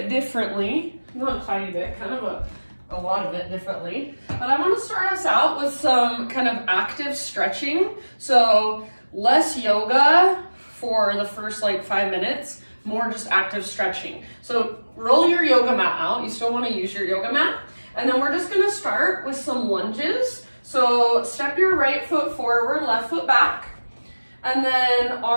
differently. Not a tiny bit, kind of a lot of it differently. But I want to start us out with some kind of active stretching. So less yoga for the first like 5 minutes, more just active stretching. So roll your yoga mat out. You still want to use your yoga mat. And then we're just going to start with some lunges. So step your right foot forward, left foot back. And then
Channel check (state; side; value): inverted; both; correlation -1.00